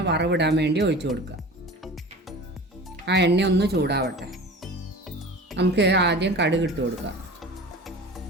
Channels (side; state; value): both; normal; correlation 0.38